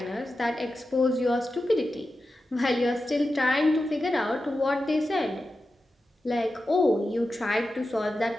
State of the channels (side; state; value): both; normal; correlation 0.92